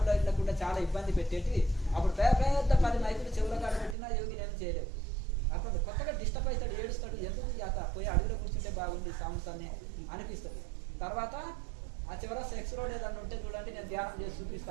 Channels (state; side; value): drops out; left; at 4.0 s